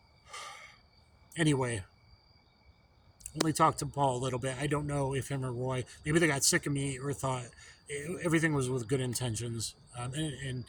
Anyway, only talked to Paul a little bit. I don't know if him or Roy, maybe they got sick of me or thought everything was with good intentions. And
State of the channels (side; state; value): both; identical; correlation 1.00